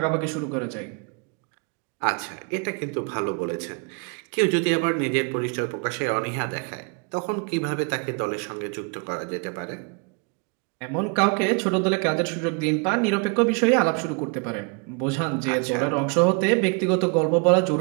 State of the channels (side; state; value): left; quieter; 34.9 dB